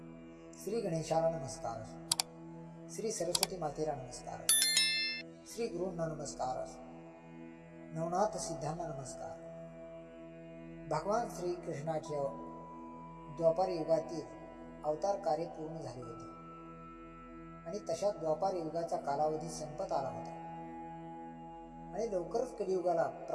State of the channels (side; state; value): both; identical; correlation 1.00